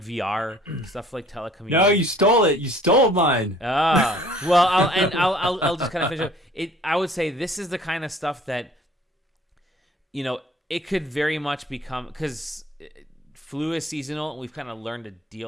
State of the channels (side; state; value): both; normal; correlation 0.53